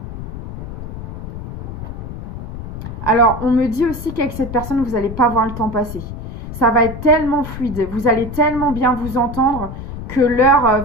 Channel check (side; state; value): left; noise; rumble, 9 dB below the sound